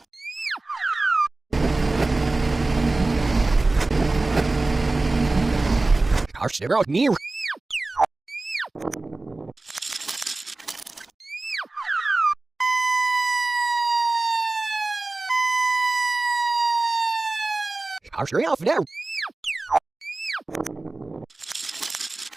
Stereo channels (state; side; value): quieter; left; 3.2 dB